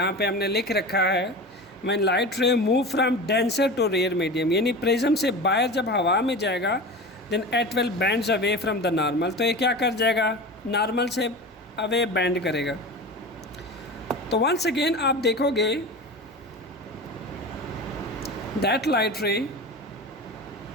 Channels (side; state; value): both; normal; correlation 0.30